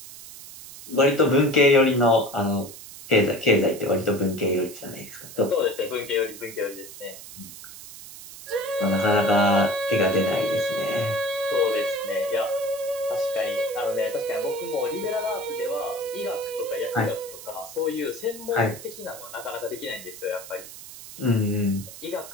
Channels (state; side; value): noise; right; hiss, 15 dB below the sound